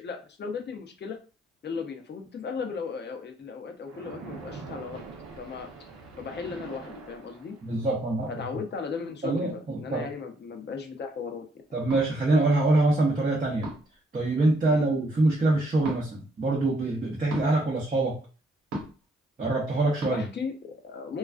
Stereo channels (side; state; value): both; normal; correlation 0.70